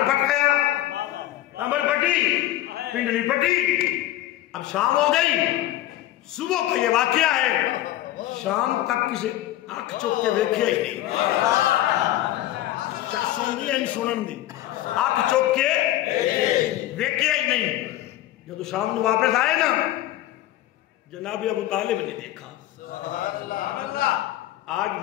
پھٹ گیا، کمر پھٹی، پنڈلی پھٹی. اب شام ہو گئی، صبح کو یہ واقعہ ہے. شام تک کسی آنکھ چوک کے دیکھے ہی نہیں، سن دی سنن دی، آنکھ چوک کے دیکھے ہی نہیں. جب شام کو واپس آئے نا، جناب ابو طالب نے دیکھا آج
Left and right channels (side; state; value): right; quieter; 14.5 dB